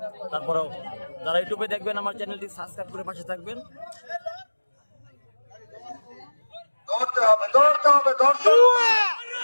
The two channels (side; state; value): both; inverted; correlation -1.00